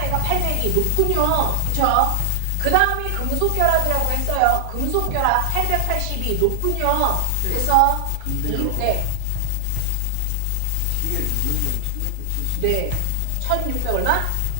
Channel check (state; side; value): different; both; correlation 0.00